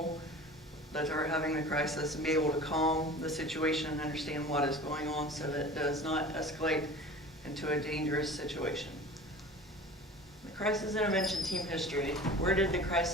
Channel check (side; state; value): both; normal; correlation 0.39